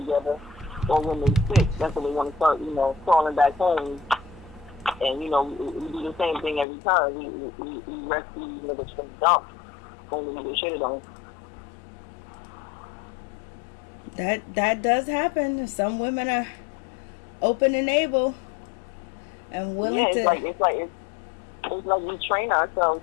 or when they sick. That's when they want to start, you know, crawling back home. And, you know, we do the same thing every time. We rescue these niggas from the dump. Only we get shitted on. That does happen. Some women are open and able and willing to. It's like we train ourselves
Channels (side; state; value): right; drops out; at 6.7 s